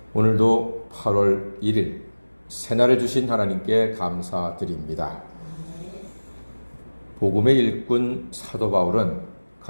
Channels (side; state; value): both; inverted; correlation -1.00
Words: 오늘도 8월 1일 새날을 주신 하나님께 감사드립니다. 복음의 일꾼 사도 바울은